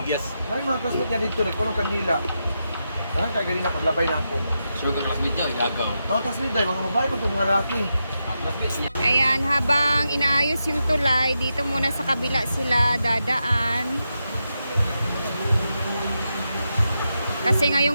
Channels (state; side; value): inverted; both; correlation -0.87